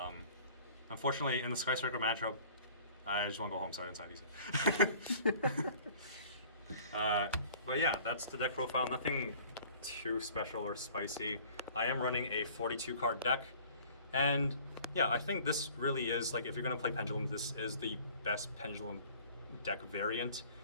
Unfortunately, in the Sky Striker matchup, I just want to go home, so I didn't side these. But yeah, that's the deck profile. Nothing too special or spicy. I am running a 42 card deck, and yeah, I think this really is, like, if you're going to play Pendulum, this is the best Pendulum deck variant.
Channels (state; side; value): inverted; both; correlation -0.50